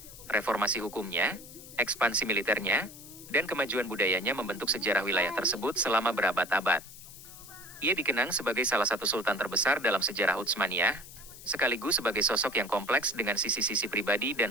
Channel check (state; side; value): noise; left; hiss, 17 dB below the sound